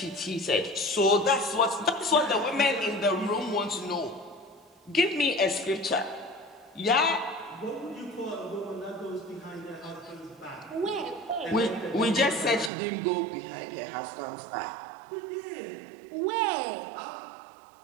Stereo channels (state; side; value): drops out; left; at 12.7 s